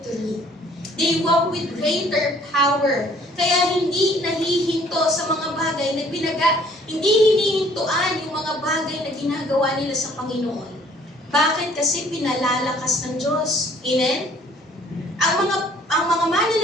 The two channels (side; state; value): both; normal; correlation 0.58